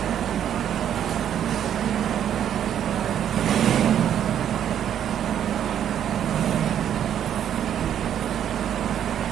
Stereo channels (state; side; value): quieter; left; 9.8 dB